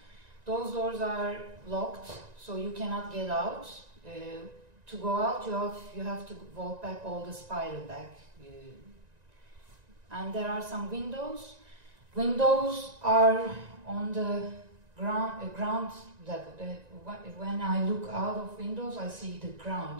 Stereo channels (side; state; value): left; late; 1.9 ms